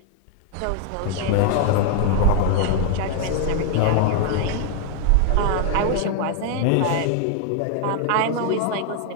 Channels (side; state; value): both; different; correlation 0.00